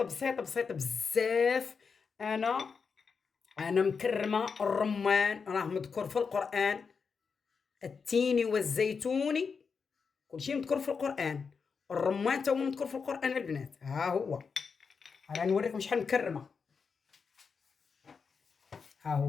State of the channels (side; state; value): right; quieter; 5.5 dB